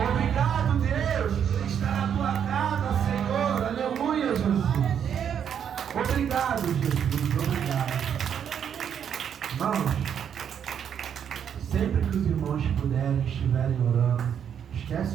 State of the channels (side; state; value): left; quieter; 8.4 dB